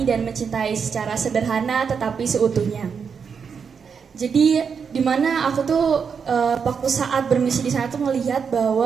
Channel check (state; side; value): quieter; left; 6.3 dB